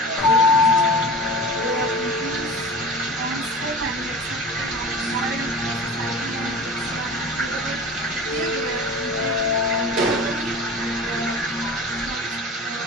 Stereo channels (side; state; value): both; normal; correlation 0.36